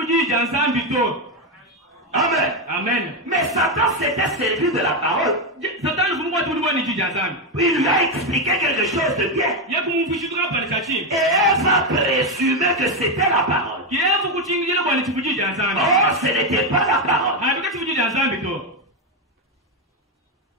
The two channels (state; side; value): normal; both; correlation 0.07